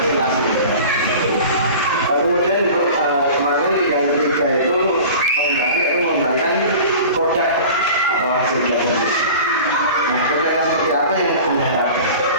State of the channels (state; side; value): inverted; both; correlation -0.39